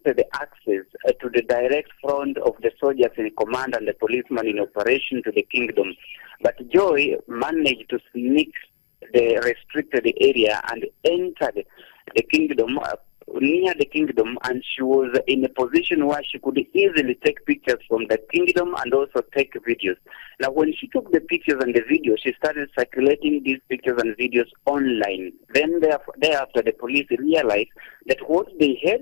access to the direct front of the soldiers in command and the policemen in operation to the kingdom. But Joy managed to sneak the restricted area and entered the kingdom, near the kingdom, and she was in a position where she could easily take pictures from the kingdom and also take videos. Now, when she took the pictures and the videos, she started circulating these pictures and videos online. Then thereafter, the police realized that what they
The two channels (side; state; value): right; silent; digital silence